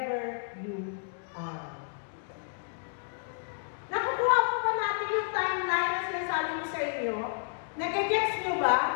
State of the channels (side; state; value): right; silent; digital silence